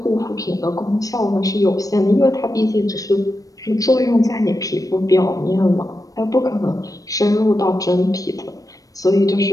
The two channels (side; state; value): right; late; 0.17 ms